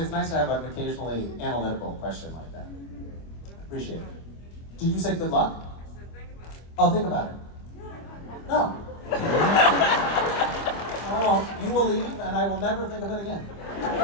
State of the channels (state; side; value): late; right; 25 ms